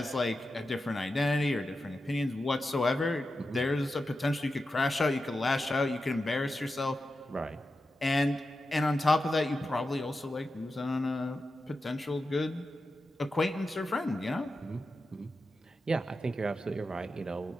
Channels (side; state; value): both; normal; correlation 0.90